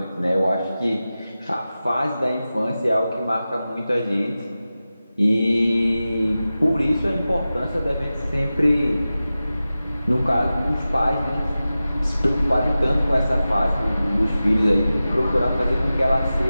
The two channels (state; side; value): inverted; both; correlation -0.95